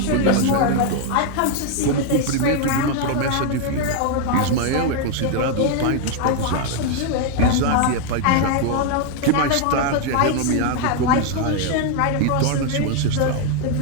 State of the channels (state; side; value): different; both; correlation 0.01